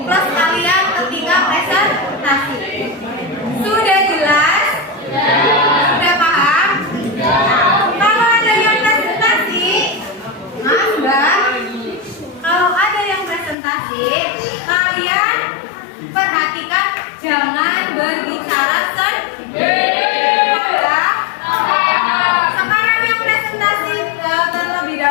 kalian ketika presentasi. Sudah jelas? Sudah paham? Kalau ada yang presentasi, Mbak, kalau ada yang presentasi, kalian perhatikan jangan berbicara sendiri. Sekarang yang presentasi terlebih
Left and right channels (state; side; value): drops out; right; at 13.6 s